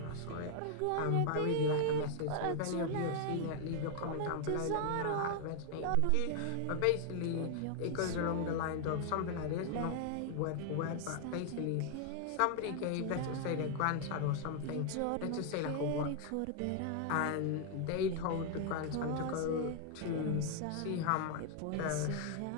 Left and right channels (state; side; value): different; both; correlation 0.00